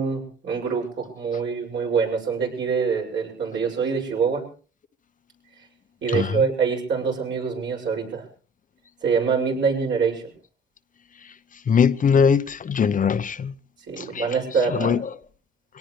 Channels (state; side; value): normal; both; correlation 0.49